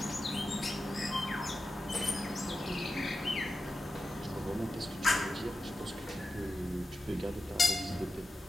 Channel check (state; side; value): normal; both; correlation 0.91